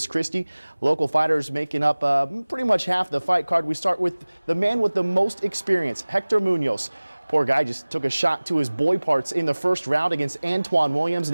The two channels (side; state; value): both; inverted; correlation -1.00